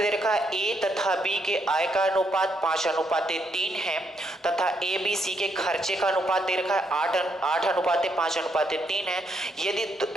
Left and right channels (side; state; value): both; normal; correlation 0.76